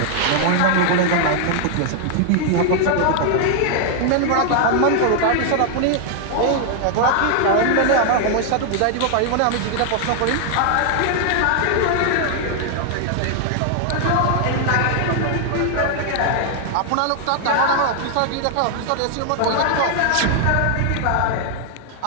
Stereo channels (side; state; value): both; different; correlation 0.00